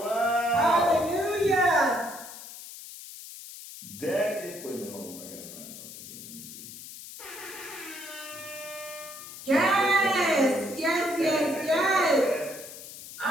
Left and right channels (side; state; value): left; noise; hiss, 13 dB below the sound